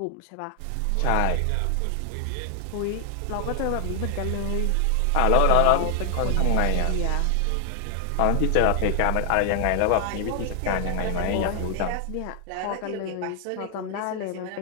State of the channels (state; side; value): different; both; correlation 0.00